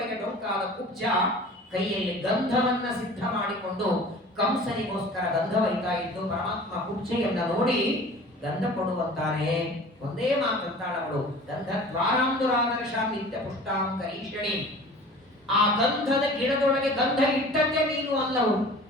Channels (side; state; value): both; normal; correlation 0.43